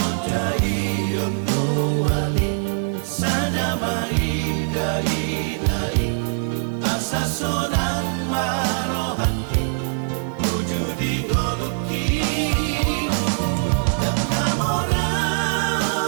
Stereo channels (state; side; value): silent; left; 60 dB below the other